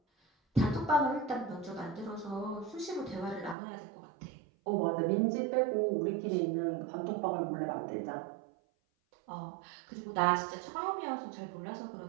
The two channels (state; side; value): drops out; left; at 3.6 s